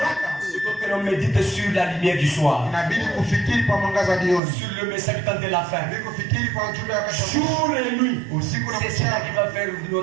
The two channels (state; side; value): drops out; left; at 4.4 s